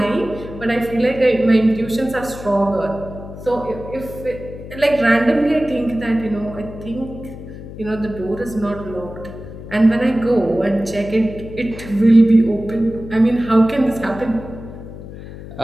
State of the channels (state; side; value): noise; left; hum, 13 dB below the sound